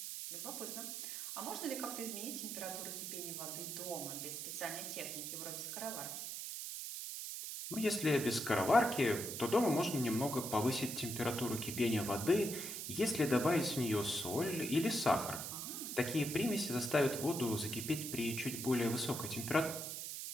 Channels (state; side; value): noise; right; hiss, 6 dB below the sound